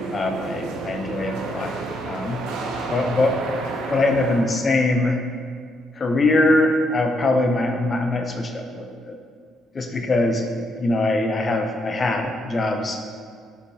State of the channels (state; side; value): normal; both; correlation 0.77